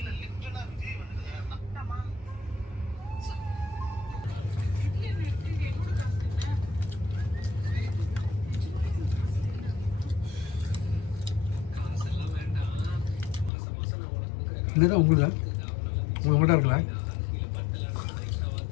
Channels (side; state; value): right; drops out; at 13.5 s